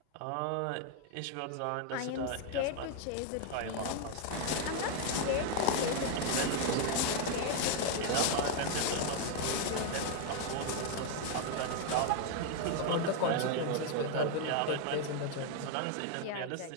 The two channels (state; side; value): different; both; correlation 0.00